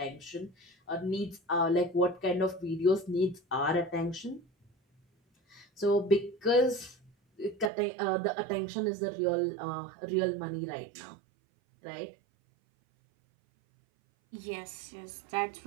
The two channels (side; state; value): left; drops out; at 7.7 s